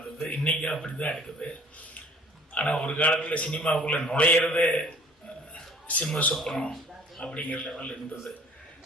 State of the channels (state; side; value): normal; both; correlation 0.53